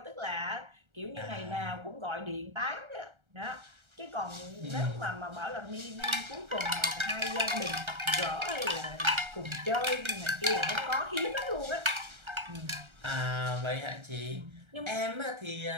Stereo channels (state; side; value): late; left; 1.3 ms